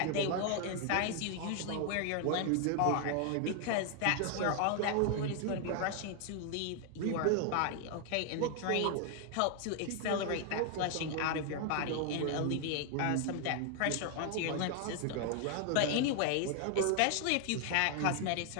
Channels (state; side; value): different; both; correlation 0.00